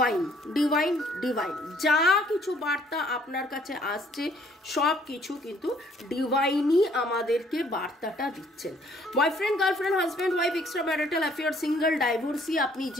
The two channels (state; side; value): normal; both; correlation 0.62